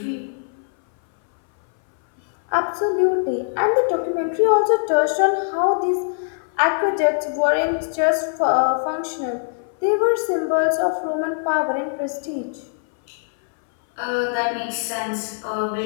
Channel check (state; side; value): silent; right; 61 dB below the other